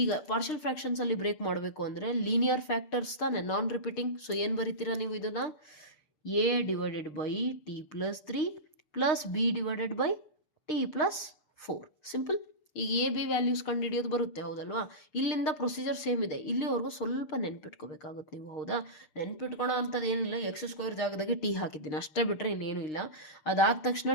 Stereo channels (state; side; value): late; right; 6.6 ms